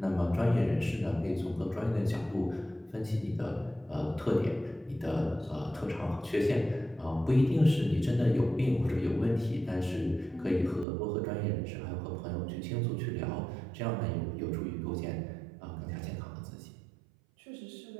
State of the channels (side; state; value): left; drops out; at 10.9 s